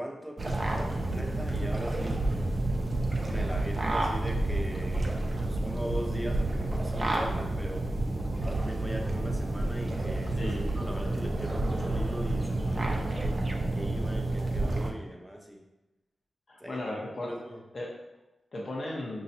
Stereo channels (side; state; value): both; normal; correlation 0.93